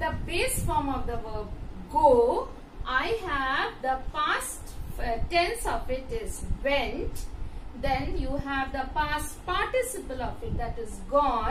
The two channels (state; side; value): identical; both; correlation 1.00